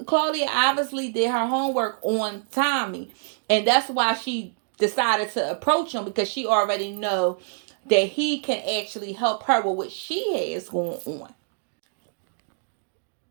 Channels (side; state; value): left; silent; digital silence